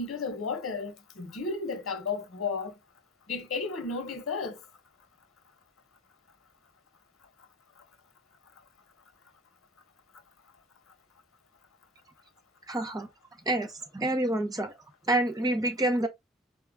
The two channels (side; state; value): both; normal; correlation 0.37